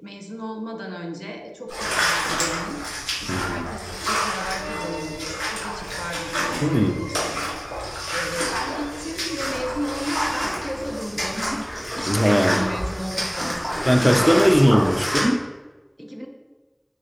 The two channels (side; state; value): both; identical; correlation 1.00